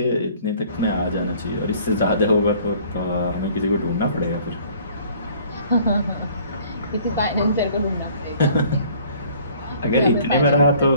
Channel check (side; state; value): both; inverted; correlation -0.55